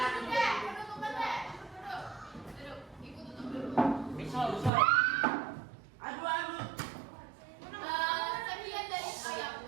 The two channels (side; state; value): left; drops out; at 4.7 s